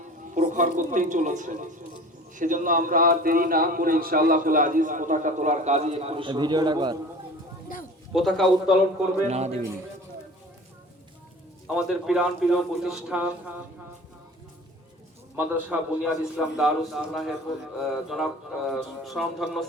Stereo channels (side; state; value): both; normal; correlation 0.41